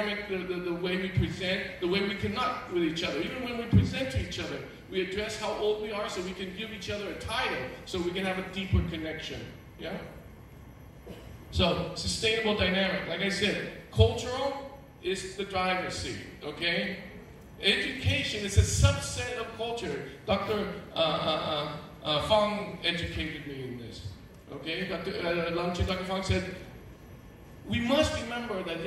the way we present, the way we connect with each other. Even when we present to each other, we address how old we are so we can give each other a title so we can have a deeper connection. Yeah? So, sustainable dynamic. Like I said, cultural is the driver's seat, okay? Education is a subset of culture. Dr. Fong educated me in this. Okay, Dr. Fong said, we must remember that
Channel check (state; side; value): identical; both; correlation 1.00